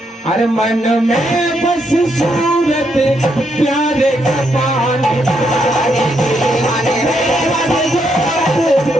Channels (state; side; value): normal; both; correlation 0.77